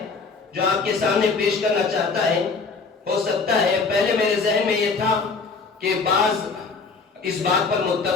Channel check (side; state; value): right; quieter; 4.5 dB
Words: جو آپ کے سامنے پیش کرنا چاہتا ہے۔ ہو سکتا ہے پہلے میرے ذہن میں یہ تھا کہ بعض اس بات پر